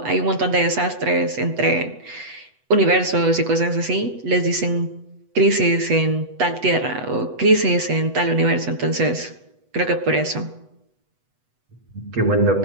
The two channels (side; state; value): left; late; 8.1 ms